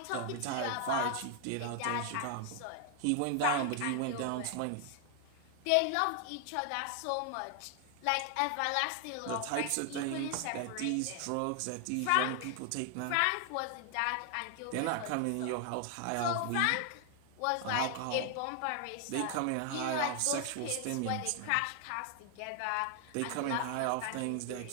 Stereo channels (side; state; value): both; different; correlation 0.00